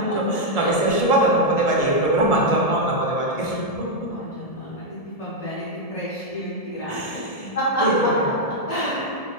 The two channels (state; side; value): late; right; 1.7 ms